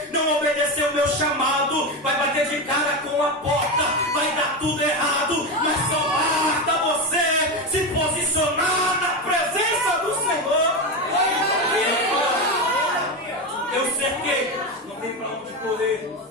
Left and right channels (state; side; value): normal; both; correlation 0.16